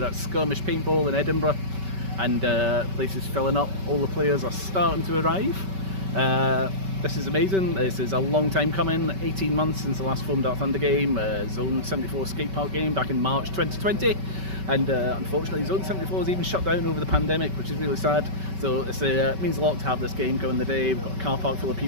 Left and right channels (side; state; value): left; late; 5.2 ms